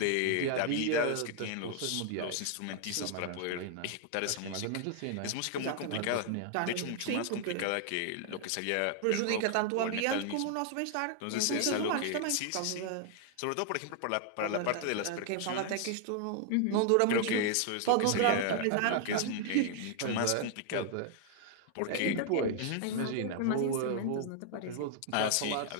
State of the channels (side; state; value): both; different; correlation -0.01